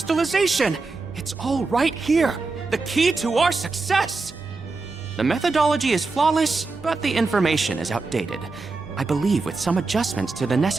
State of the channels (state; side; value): quieter; left; 3.8 dB